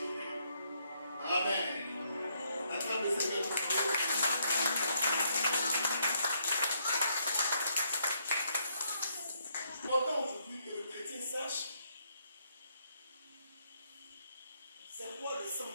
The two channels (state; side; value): inverted; both; correlation -0.74